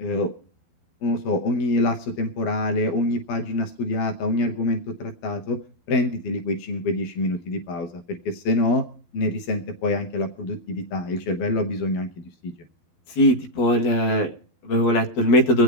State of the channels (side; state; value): right; late; 12 ms